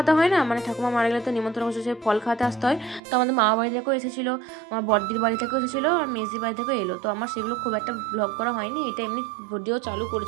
হয় না, ঠাকুমা মারা গেলে তো নিমন্ত্রণ করছে, ফল খাওয়াতে আসতে হয়। তো আমাদের মামা বাড়ি থেকেও এসেছিলো, আমার বড়দির বাড়ি থেকেও এসেছিলো, আর মেজদির বাড়ি থেকেও এলো। তো আমার সেগুলো খুব একটা ব্লগ করা হয়নি, এটা এমনি ভিডিও চালু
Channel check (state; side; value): drops out; left; at 3.0 s